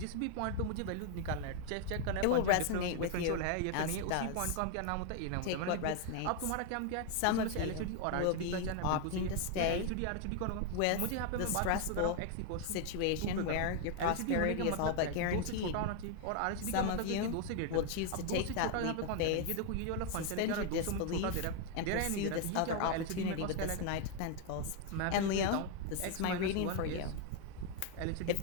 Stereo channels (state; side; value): different; both; correlation 0.00